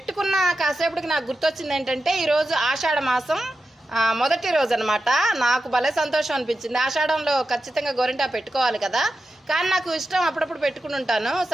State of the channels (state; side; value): normal; both; correlation 0.90